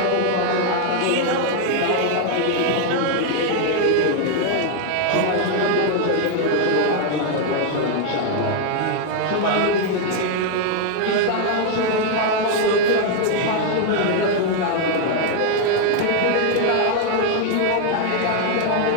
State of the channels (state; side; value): different; both; correlation 0.00